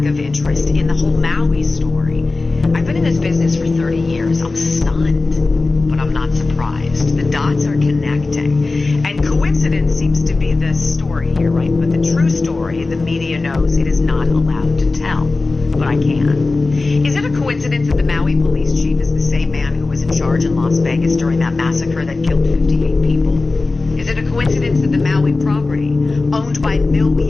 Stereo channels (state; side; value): quieter; right; 3.5 dB